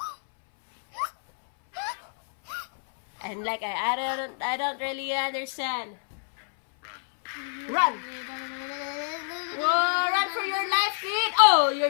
And like I don't really understand. Run! Whoa, run for your life, kid! Oh,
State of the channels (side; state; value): right; silent; 60 dB below the other